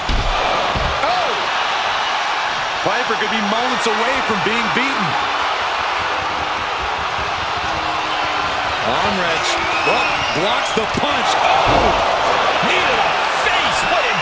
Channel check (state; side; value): identical; both; correlation 1.00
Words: Oh! Piper could be moments away from being beaten. Arm wrench. Oh, blocks the punch. Oh! Knee to the face. What